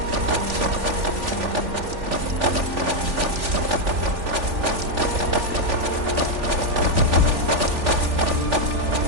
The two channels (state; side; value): late; left; 3.4 ms